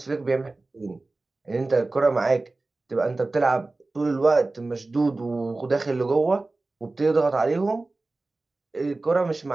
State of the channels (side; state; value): left; quieter; 3.2 dB